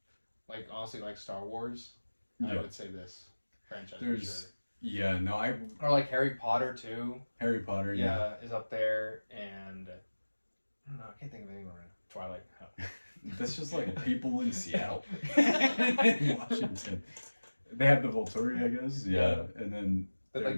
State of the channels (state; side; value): inverted; both; correlation -1.00